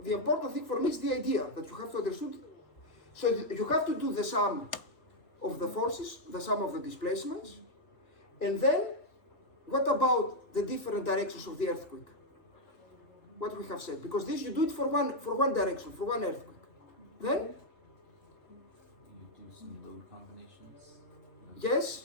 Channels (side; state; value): right; late; 3.0 ms